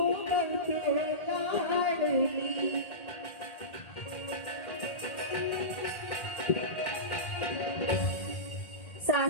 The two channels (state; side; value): late; right; 1.8 ms